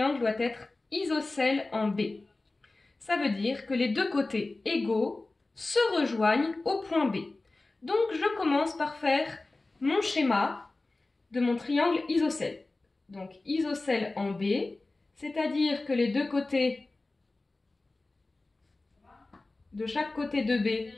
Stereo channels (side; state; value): right; quieter; 3.2 dB